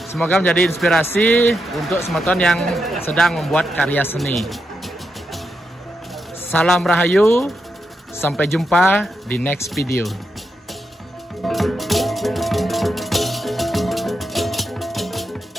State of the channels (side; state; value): both; normal; correlation 0.85